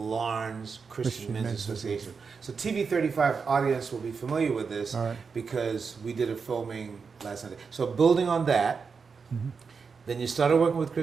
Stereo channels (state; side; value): quieter; left; 5.4 dB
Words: Christian Men's Association. So TV35 audience will be familiar with this because we did a filming last Sunday. So building on that, then you started working with